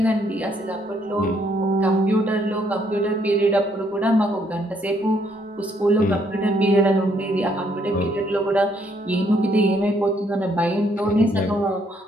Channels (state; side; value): normal; both; correlation 0.70